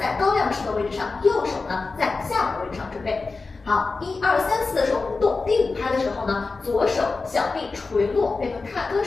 在高亮式的位置上，右手呢在下的位置上准备。好，1、2、3、4的时候不动，第5拍的时候呢，左手小臂垂落，变成踏歌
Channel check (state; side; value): quieter; right; 4.0 dB